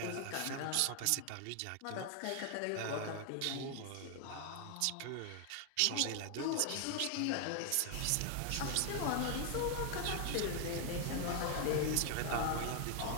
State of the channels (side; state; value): both; different; correlation 0.00